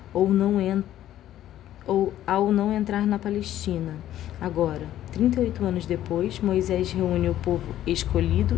ou ao não entrar na Palestina. Agora, 38 anos depois, Moisés reúne o povo escolhido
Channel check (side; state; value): right; quieter; 12.5 dB